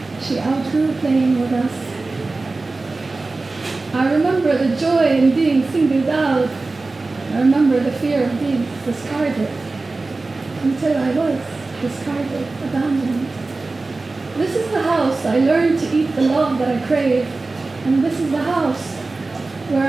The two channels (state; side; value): quieter; left; 3.5 dB